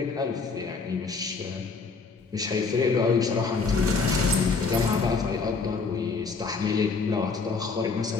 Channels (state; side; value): quieter; right; 4.6 dB